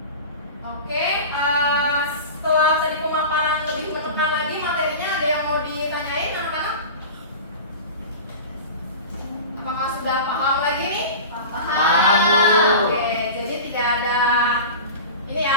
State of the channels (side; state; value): both; inverted; correlation -0.32